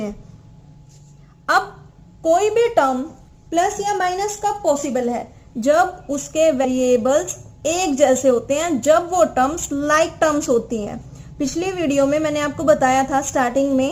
अब कोई भी टर्म प्लस या माइनस कब पॉसिबल है, जब उसके वेरिएबल्स एक जैसे होते हैं, जब वो टर्म्स लाइक टर्म्स होती हैं। पिछली वीडियो में मैंने आपको बताया था स्टार्टिंग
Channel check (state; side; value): identical; both; correlation 1.00